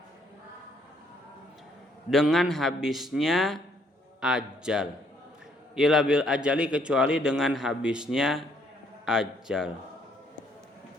dengan habisnya ajal. Illa bil ajali, kecuali dengan habisnya ajal.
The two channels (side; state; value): both; normal; correlation 0.68